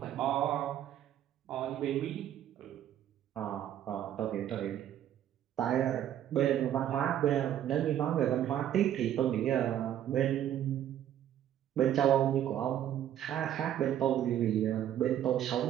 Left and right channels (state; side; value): quieter; left; 11.0 dB